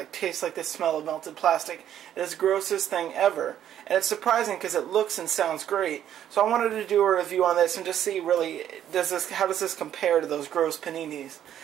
tastes like the smell of melted plastic. It's the grossest thing ever, and it's surprising because it looks and sounds great. So I wanted to do a review on this and just see really, how does this compare to those gross paninis?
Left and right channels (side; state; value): left; quieter; 10.6 dB